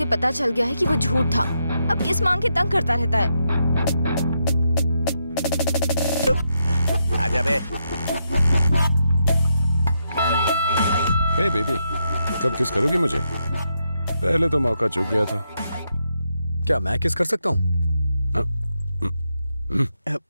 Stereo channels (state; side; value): inverted; both; correlation -0.82